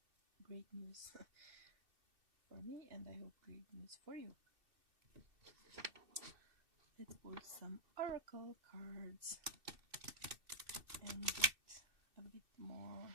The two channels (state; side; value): late; left; 2.6 ms